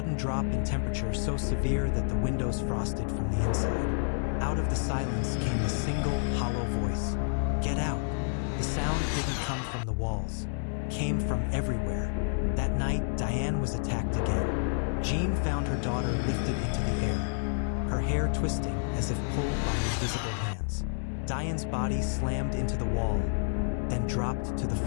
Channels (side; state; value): right; silent; digital silence